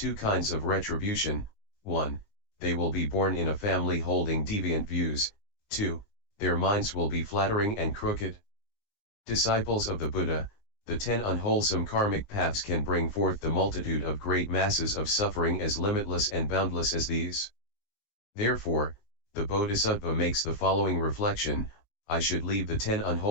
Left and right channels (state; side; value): late; right; 19 ms